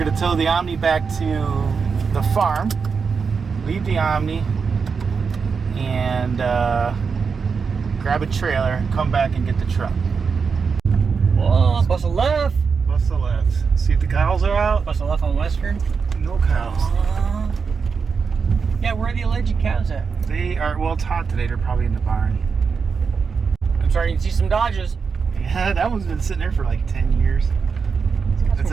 tow the Omni back to the farm, leave the Omni, and grab a trailer and come back and get the truck. Whoa, bust a left. Bust the left. See if the cows are out. Bust a left on Western. No cows. Yeah, where are the alleged cows at? They are, well, it's hot today. They're probably in the barn. I'm starting to see some Dodges. Yeah, that one's been sitting there for like 10 years. That's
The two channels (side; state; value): left; quieter; 5.5 dB